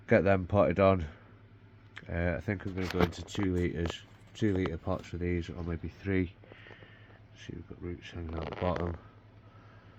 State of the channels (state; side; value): identical; both; correlation 1.00